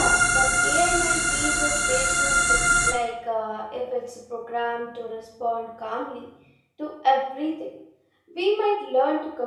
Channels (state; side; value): identical; both; correlation 1.00